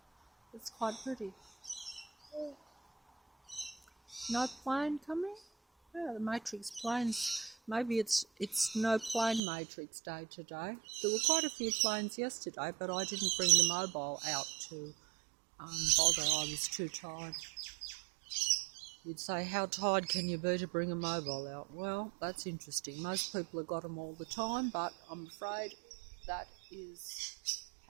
It's quite pretty. No plane coming? Yeah, the Matrix planes. Maybe it's no plane Matrix day today. There were quite a few planes yesterday, but I didn't bring the mobile out to bother. I was too tired. You'd say, how tired can you be to bring a mobile out? Well, that's interesting. Most people have got them all the time, but I'm afraid that is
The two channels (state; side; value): drops out; left; at 9.4 s